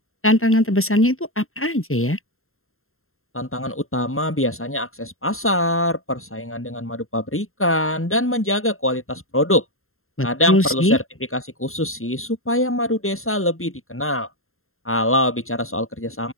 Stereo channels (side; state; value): right; late; 0.61 ms